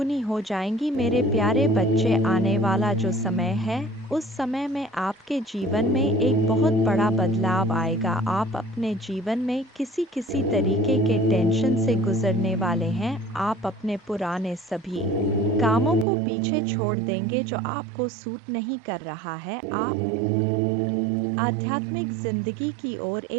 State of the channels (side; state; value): left; drops out; at 16.1 s